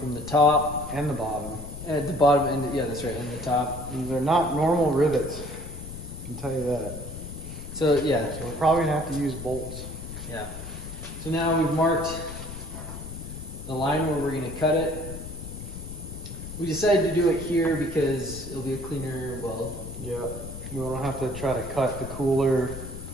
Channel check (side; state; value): left; noise; rumble, 10 dB below the sound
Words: the top And the bottom. at the bottom, and yeah, that's right, and the top. These are not normal rivets, I can tell you that. So yeah, So we're probably going to have to use bolts. yeah. So now we've marked the line where we're going to cut it. We decided to do it here because it'll be a cleaner weld. Yeah, we don't have to try to cut the cooler